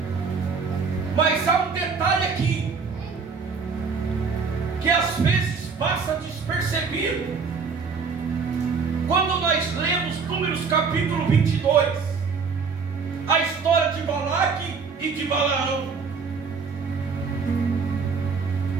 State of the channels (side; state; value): left; quieter; 5.3 dB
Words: mas há um detalhe aqui que às vezes passa despercebido quando nós lemos Números capítulo 22, a história de Balaque e de Balaão.